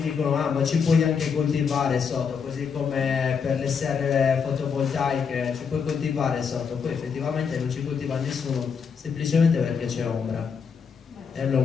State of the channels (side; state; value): right; quieter; 6.2 dB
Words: dicono ma ci puoi anche coltivare sotto, così come per le serre fotovoltaiche ci puoi coltivare sotto, poi effettivamente non ci coltiva nessuno, semplicemente perché c'è ombra e